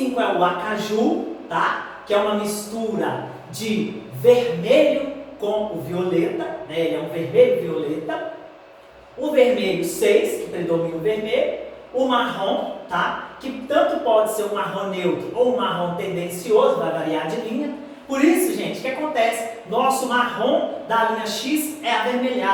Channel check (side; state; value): both; identical; correlation 1.00